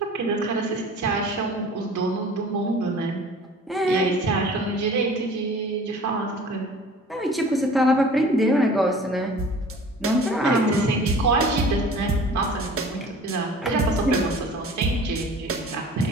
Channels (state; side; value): normal; both; correlation 0.45